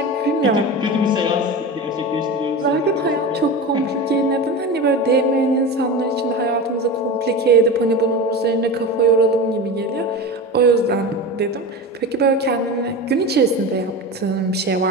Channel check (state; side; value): normal; both; correlation 0.26